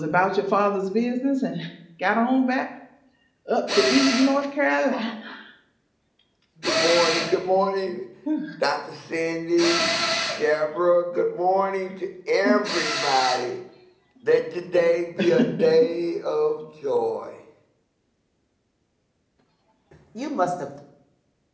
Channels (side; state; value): both; identical; correlation 1.00